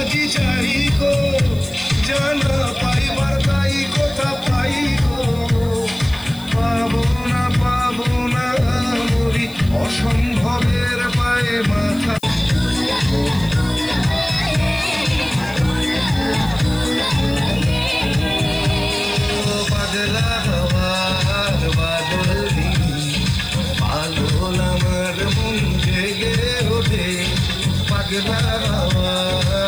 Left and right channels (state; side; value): noise; left; hiss, 22 dB below the sound